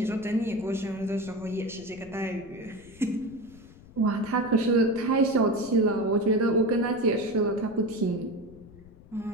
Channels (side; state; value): left; noise; rumble, 21 dB below the sound